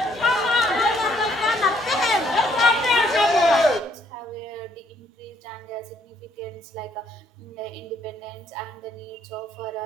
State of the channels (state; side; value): normal; both; correlation 0.68